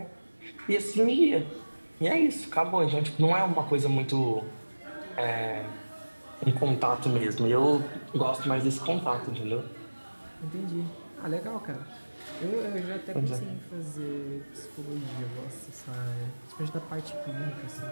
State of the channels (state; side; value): inverted; both; correlation -1.00